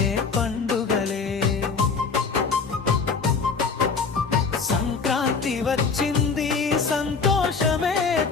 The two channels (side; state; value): right; quieter; 5.0 dB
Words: పండుగలే. సంక్రాంతి వచ్చింది, సంతోషమే